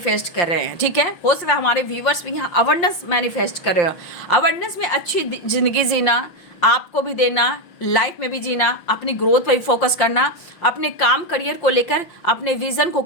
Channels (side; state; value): right; late; 5.6 ms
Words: कर रहे हैं, ठीक है। हो सकता है हमारे व्यूवर्स भी यहाँ अवेयरनेस मैनिफेस्ट कर रहे हो। अवेयरनेस में अच्छी जिंदगी जीना, आपको भी देना, लाइफ में भी जीना, अपनी ग्रोथ पर भी फोकस करना, अपने काम करियर को लेकर अपने विजन को